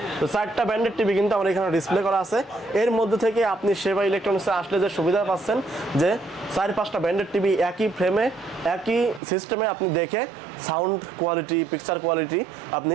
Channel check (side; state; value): left; drops out; at 9.2 s